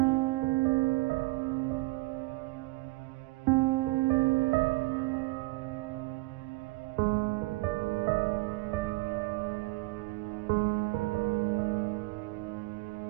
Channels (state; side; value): quieter; left; 23.0 dB